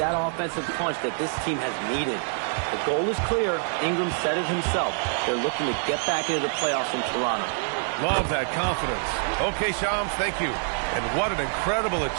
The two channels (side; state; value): left; silent; 61 dB below the other